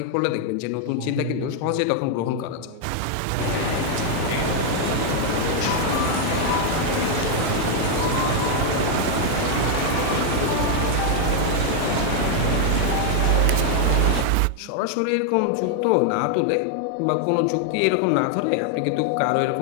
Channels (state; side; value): different; both; correlation 0.00